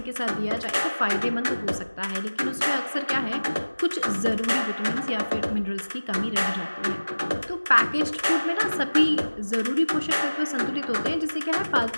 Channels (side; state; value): both; inverted; correlation -1.00